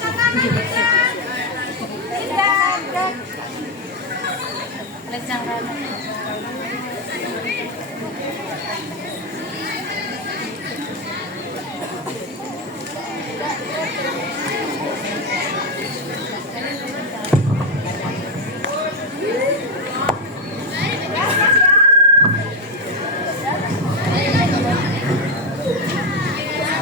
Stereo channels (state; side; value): normal; both; correlation 0.07